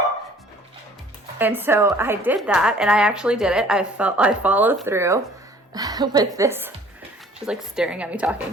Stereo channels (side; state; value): both; normal; correlation 0.53